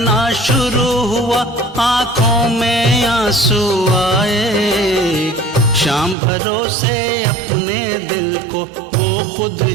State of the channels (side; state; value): left; drops out; at 6.2 s